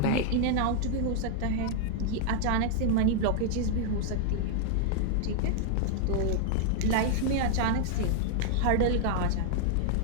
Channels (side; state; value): both; different; correlation 0.00